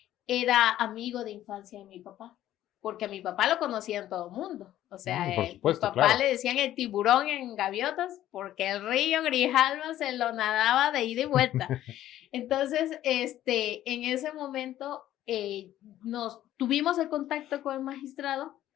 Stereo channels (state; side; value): quieter; right; 13.0 dB